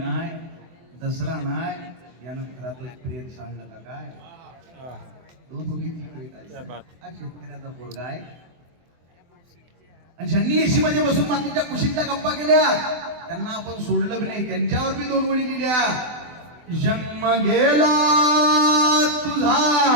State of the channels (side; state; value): left; late; 24 ms